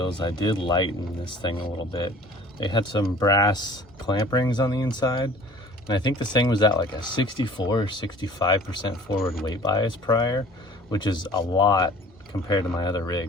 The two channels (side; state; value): both; normal; correlation 0.48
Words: I did lighten this thing a little bit. They had some brass clamp rings on the inside, and I think this thing was at like a 64 or 65% forward weight bias prior, which is a lot compared to my other